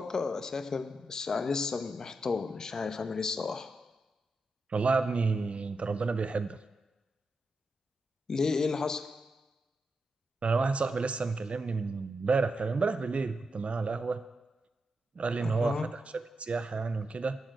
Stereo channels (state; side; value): normal; both; correlation 0.86